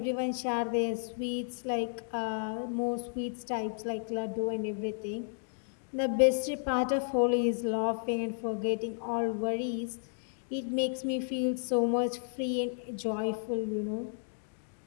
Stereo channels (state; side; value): silent; right; digital silence